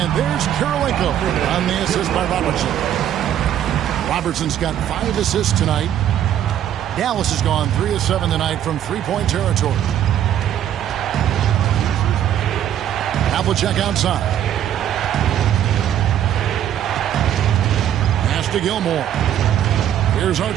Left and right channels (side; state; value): left; quieter; 10.7 dB